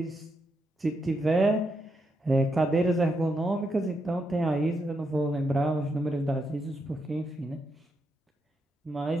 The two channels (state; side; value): normal; both; correlation 0.82